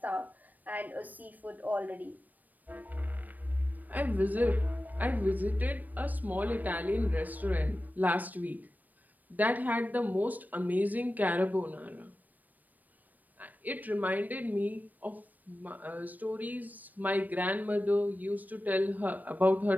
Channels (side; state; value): left; late; 0.084 ms